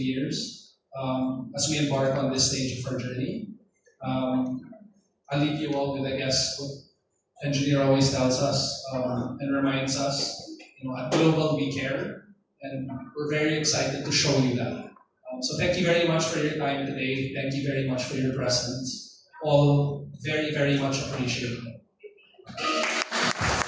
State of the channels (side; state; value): both; identical; correlation 1.00